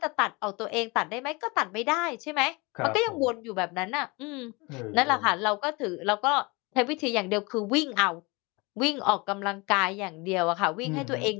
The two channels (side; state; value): right; quieter; 26.4 dB